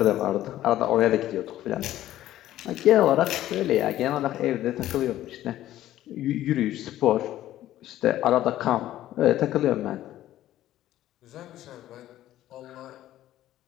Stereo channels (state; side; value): quieter; right; 13.6 dB